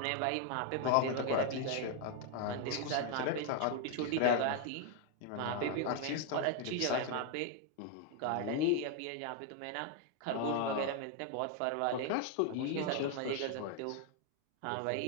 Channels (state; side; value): different; both; correlation 0.00